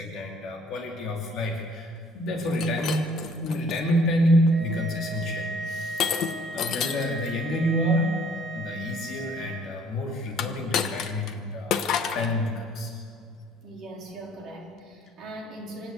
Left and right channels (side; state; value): both; normal; correlation 0.58